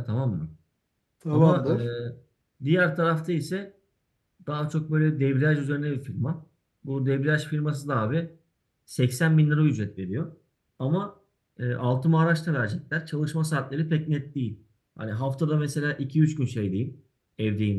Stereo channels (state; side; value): identical; both; correlation 1.00